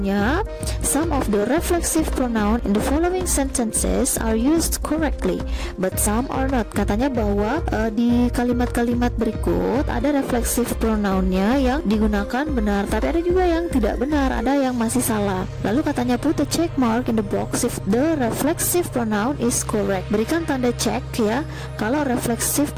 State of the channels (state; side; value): identical; both; correlation 1.00